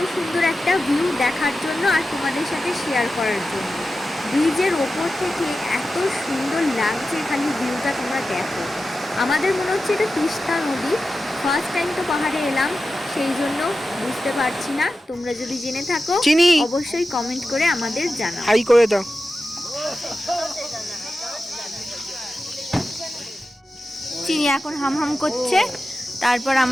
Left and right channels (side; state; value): both; normal; correlation 0.92